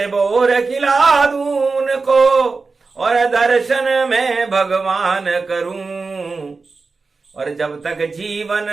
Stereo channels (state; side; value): quieter; left; 4.2 dB